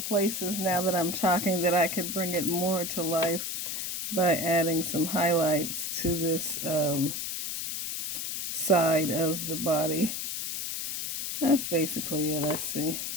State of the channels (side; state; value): left; noise; hiss, 3 dB below the sound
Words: places now that I'm talking that I could bring it more to life by adding some highlights to this side of the body. That's basically it, I see.